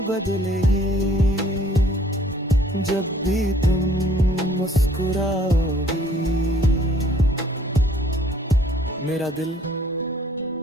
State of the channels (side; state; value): both; normal; correlation 0.58